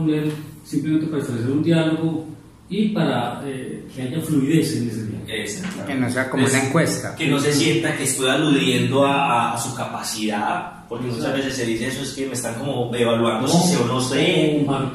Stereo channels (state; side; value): identical; both; correlation 1.00